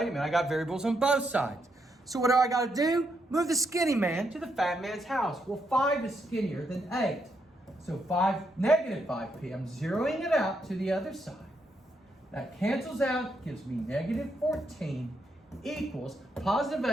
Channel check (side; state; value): both; normal; correlation 0.79